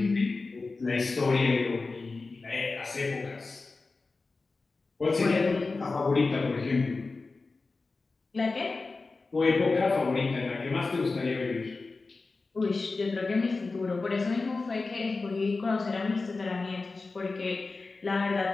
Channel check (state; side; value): quieter; right; 3.8 dB